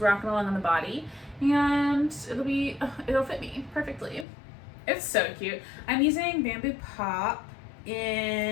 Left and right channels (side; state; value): right; drops out; at 4.2 s